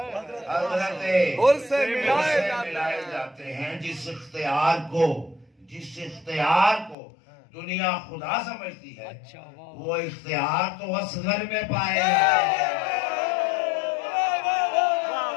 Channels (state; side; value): drops out; right; at 7.0 s